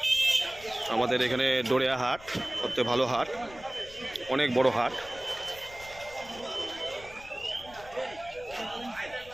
আমাদের এখানে ডোরিয়া হাট সবচেয়ে ভালো হাট, অনেক বড় হাট।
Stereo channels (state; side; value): noise; left; rumble, 20 dB below the sound